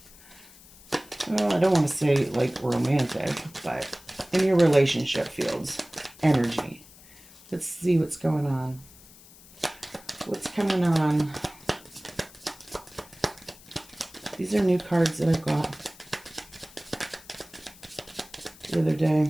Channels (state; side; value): noise; left; hiss, 22 dB below the sound